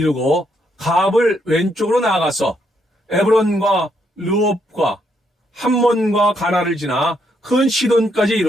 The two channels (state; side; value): normal; both; correlation 0.75